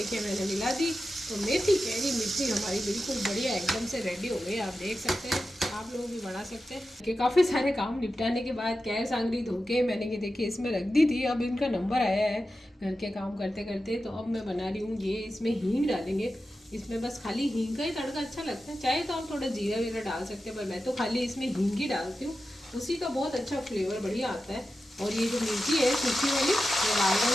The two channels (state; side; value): normal; both; correlation 0.92